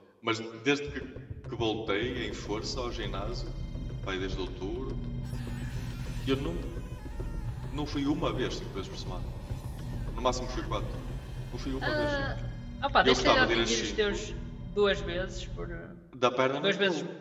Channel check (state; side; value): identical; both; correlation 1.00